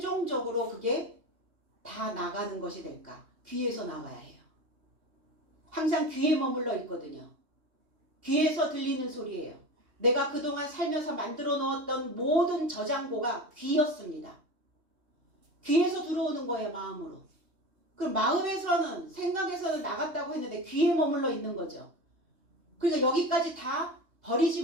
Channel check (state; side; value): late; left; 3.2 ms